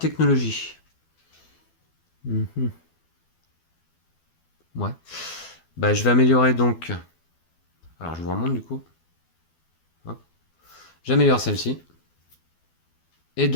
Ouais. Bah, je vais améliorer donc. Alors, je vous remonte du coup. J'améliore celle-ci. Et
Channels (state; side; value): late; right; 12 ms